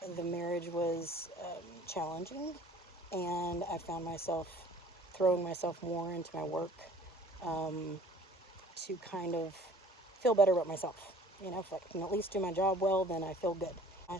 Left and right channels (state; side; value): normal; both; correlation 0.50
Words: The marriage was challenging, and I found myself throwing myself more into my work to kind of feel better about myself. If I can at least do my job well, then I feel good. I